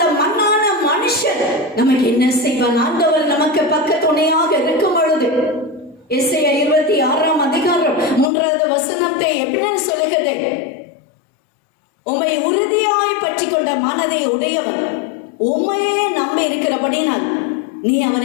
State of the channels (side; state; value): right; drops out; at 8.2 s